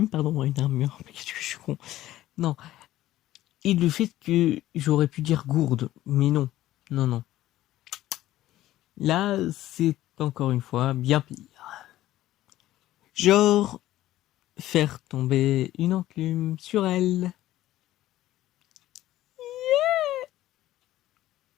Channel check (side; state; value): right; quieter; 14.6 dB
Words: pardon, une armure. Qu'est-ce que je suis con. Non. Et le fait que j'aurais pu dire gourde, mais non. Non, non. Là, c'est encore une fois bien pire. Genre, faire tomber une enclume sur elle.